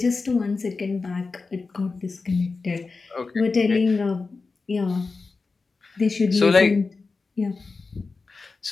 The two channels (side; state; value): right; quieter; 4.1 dB